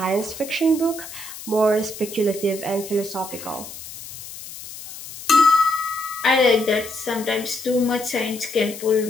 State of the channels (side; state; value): left; noise; hiss, 13 dB below the sound